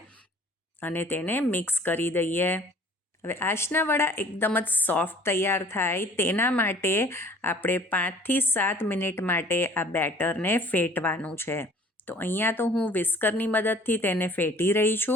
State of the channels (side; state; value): both; normal; correlation 0.51